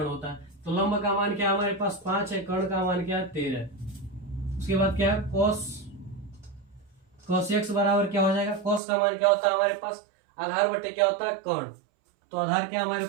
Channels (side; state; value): left; drops out; at 8.8 s